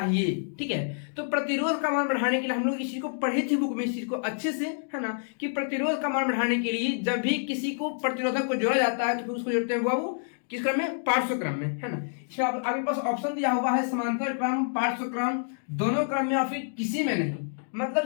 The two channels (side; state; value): right; silent; digital silence